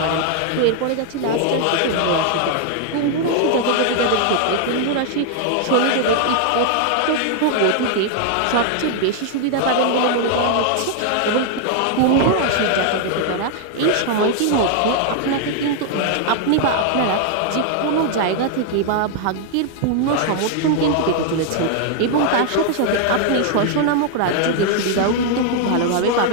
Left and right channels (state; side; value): different; both; correlation 0.00